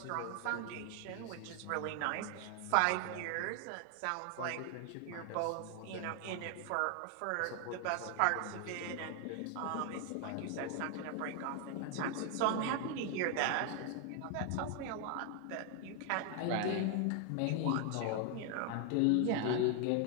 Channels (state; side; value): different; both; correlation 0.00